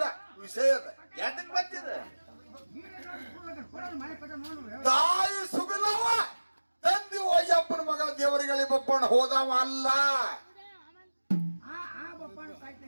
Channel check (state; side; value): inverted; both; correlation -1.00